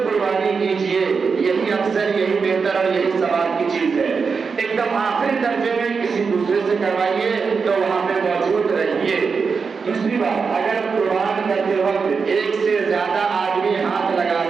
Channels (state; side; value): quieter; left; 5.3 dB